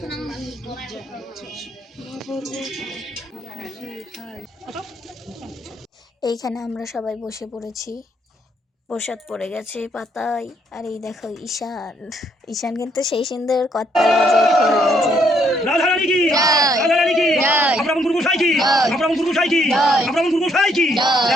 এইখানে আমরা সবাই বসে পড়েছি, প্রসাদ পড়ে গেছে পাতায়। আর এই দেখো ঈশান, ঈশান কিন্তু সেই সুন্দর করতাল বাজায়, খোল বাজায়। রাধা রানী কি, রাধা রানী কি, আমরা গুরু গোসাই কি, আমরা গুরু গোসাই কি, আমরা গুরু গোসাই কি।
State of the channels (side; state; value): both; normal; correlation 0.70